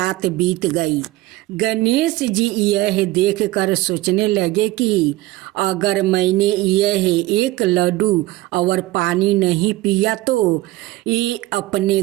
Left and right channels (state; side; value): quieter; left; 17.9 dB